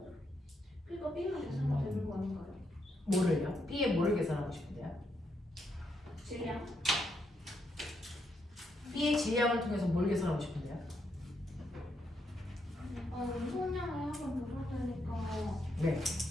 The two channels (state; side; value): normal; both; correlation 0.79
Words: 그러니까 B만 계산하면 되는 거 아닌가요? 뭐를요? B의 뭐를 계산하고 싶은데요? 질량? B의 질량을 통해서 뭘 계산하고 싶은데요? 운동량을 한번 보실 테니까. 네.